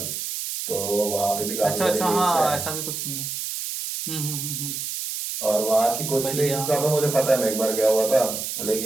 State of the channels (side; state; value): right; noise; hiss, 5 dB below the sound